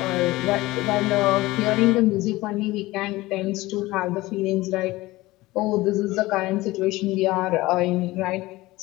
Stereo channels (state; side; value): quieter; right; 19.2 dB